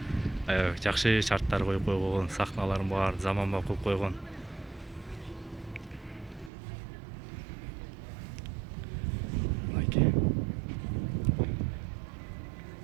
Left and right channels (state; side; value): drops out; left; at 6.5 s